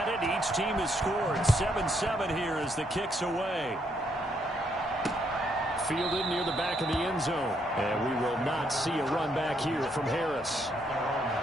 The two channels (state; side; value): normal; both; correlation 0.74